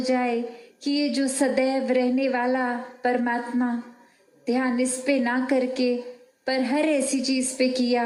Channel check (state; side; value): identical; both; correlation 1.00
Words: कि ये जो सदैव रहने वाला परमात्मा, ध्यान इस पे ना करके पर हर ऐसी चीज़ पे